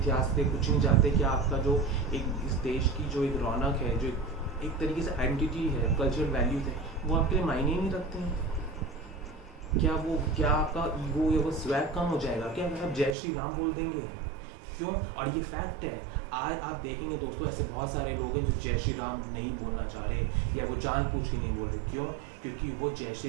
से कुछ नहीं जानते? क्या आपका जो एक इस देश की जो एक रौनक है, जो एक तरीके से आइडेंटिटी है, कल्चरल वैल्यूज है, वो आपके लिए मायने ही नहीं रखते हैं? क्या आपका ईगो या वो स्वैग कम हो जाएगा क्या अगर आप जय श्री राम बोल देंगे? क्यों? और ये फैक्ट है। आज आप देखेंगे दोस्तों, ऐसे बहुत सारे लोग हैं जो जय श्री राम नहीं बोलना चाह रहे, या वो जानबूझ के नहीं बोल रहे। क्यों? क्योंकि वो जय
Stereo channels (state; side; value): drops out; left; at 13.2 s